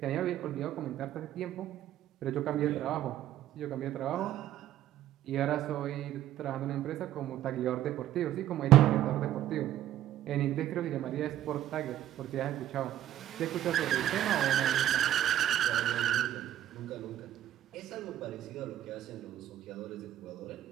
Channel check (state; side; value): quieter; left; 12.4 dB